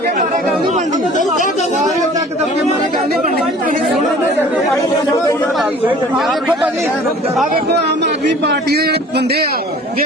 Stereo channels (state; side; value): normal; both; correlation 0.48